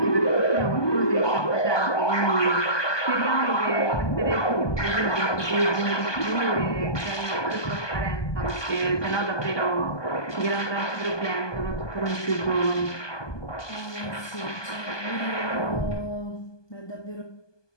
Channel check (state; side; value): late; right; 1.2 ms